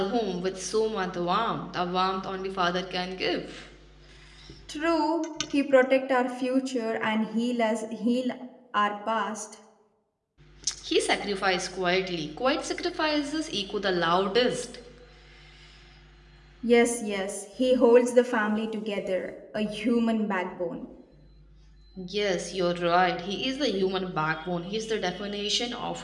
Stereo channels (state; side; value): identical; both; correlation 1.00